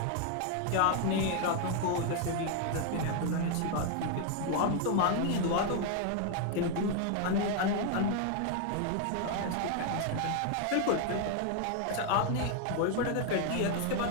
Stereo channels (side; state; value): both; different; correlation 0.00